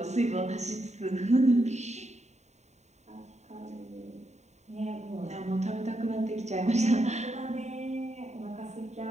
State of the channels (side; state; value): left; late; 0.33 ms